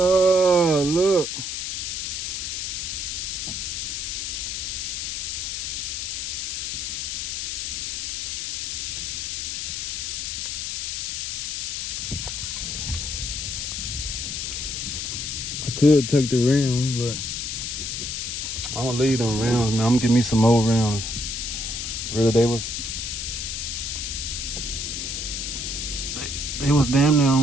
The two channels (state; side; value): noise; left; hiss, 3 dB below the sound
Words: look. I could take the rounds, but I'm gonna leave them rounds, man. I'm gonna give me some more rounds. Really, they was damn near